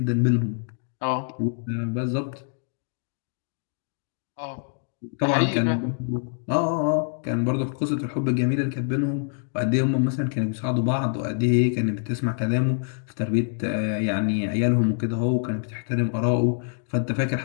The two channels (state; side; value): silent; right; 61 dB below the other